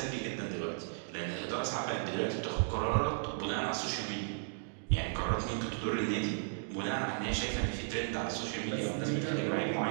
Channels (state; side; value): silent; left; digital silence